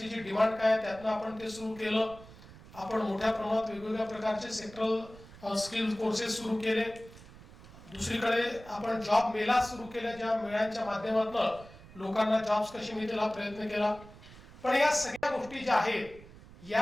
डिमांड काय त्यातनं आपण ते सुरू केलं. आपण मोठ्या प्रमाणात वेगवेगळ्या प्रकारचे सेक्टरल स्किल कोर्सेस सुरू केले. दुसरीकडे आपण जॉब मेला सुरू केल्या, ज्या मेळ्यांच्या माध्यमातून लोकांना जॉब्स कसे मिळतील हा प्रयत्न केला. पण या सगळ्या गोष्टी ज्या आहेत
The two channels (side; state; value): right; noise; rumble, 19 dB below the sound